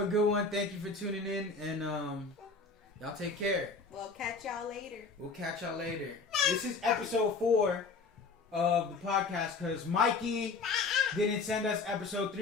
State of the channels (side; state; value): right; quieter; 4.2 dB